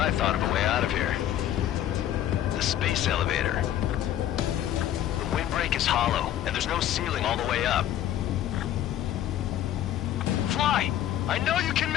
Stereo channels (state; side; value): quieter; right; 11.8 dB